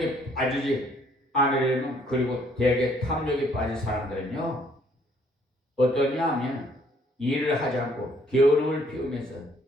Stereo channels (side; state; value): both; normal; correlation 0.64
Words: 빠지지 않으려면 그리고 대개 탐욕에 빠진 사람들은요 어떠냐 하면 일을 하지 않고 게으름을 피우면서